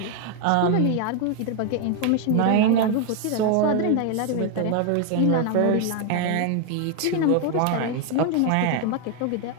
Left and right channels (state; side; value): different; both; correlation 0.01